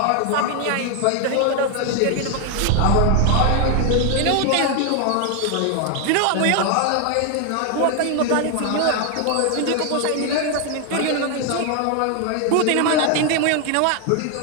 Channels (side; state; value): both; different; correlation 0.00